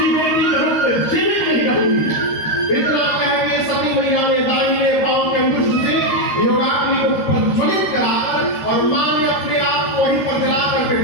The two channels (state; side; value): late; right; 13 ms